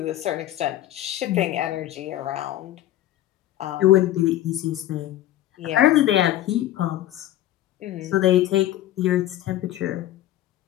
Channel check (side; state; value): right; quieter; 13.5 dB